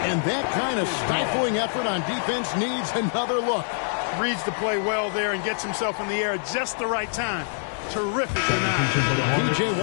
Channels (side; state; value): right; silent; digital silence